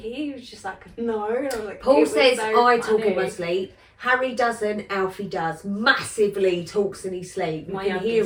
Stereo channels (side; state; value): both; identical; correlation 1.00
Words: was just like, "No." And I was like, Paul "It was says so I talk in my funny." sleep. Harry doesn't. Alfie does. Massively talks in his sleep. You can